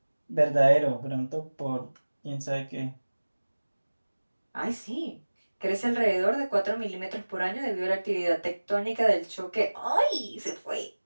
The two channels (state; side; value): inverted; both; correlation -1.00